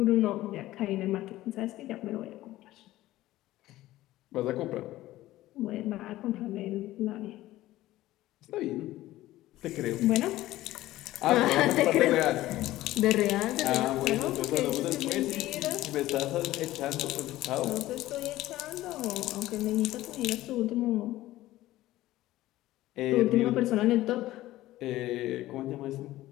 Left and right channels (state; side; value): quieter; right; 15.9 dB